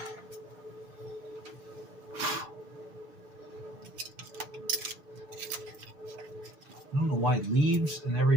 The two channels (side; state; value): left; late; 6.9 ms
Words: I don't know why leaves and